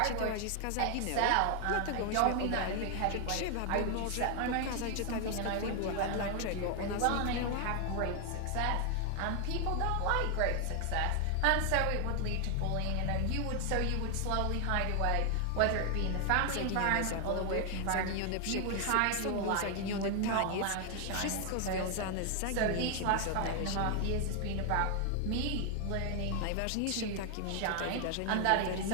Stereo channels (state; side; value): different; both; correlation 0.00